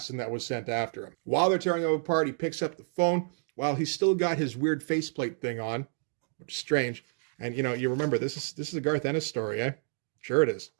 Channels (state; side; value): silent; left; digital silence